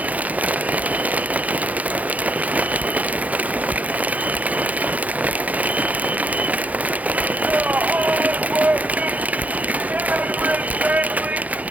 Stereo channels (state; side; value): late; left; 0.075 ms